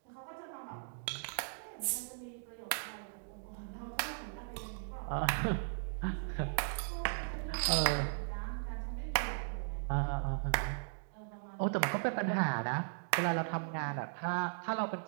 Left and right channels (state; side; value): silent; left; digital silence